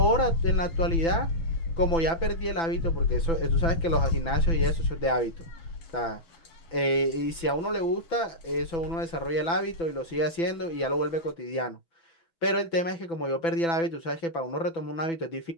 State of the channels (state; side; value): late; right; 6.0 ms